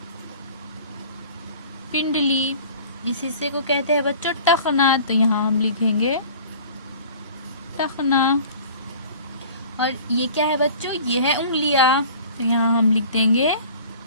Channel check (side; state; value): both; inverted; correlation -0.45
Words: पिंडली। इस हिस्से को कहते हैं बच्चों टखना, तो यहाँ हम लिखेंगे टखना। और ये क्या है बच्चों? ये है उंगलियां, तो यहाँ हम लिख देंगे